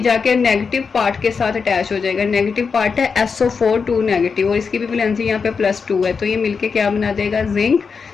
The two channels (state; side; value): quieter; right; 5.5 dB